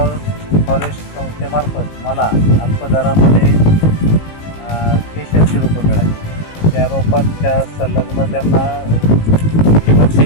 फॉरेस्ट संस्थेमार्फत मला अल्प दरामध्ये केशरची रोपं मिळाली. त्या रोपांच्या संलग्न त्यांना ठिबक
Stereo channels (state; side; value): late; right; 19 ms